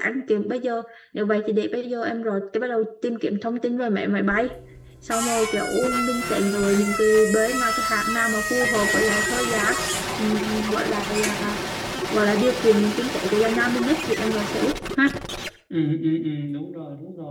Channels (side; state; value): both; identical; correlation 1.00